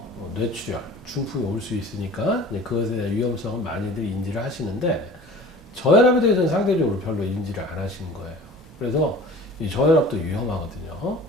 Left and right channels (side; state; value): both; normal; correlation 0.43